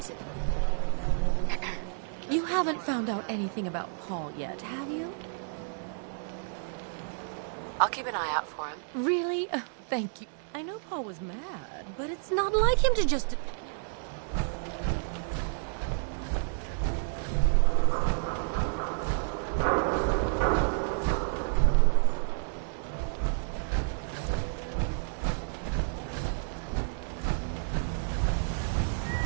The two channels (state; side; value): silent; left; digital silence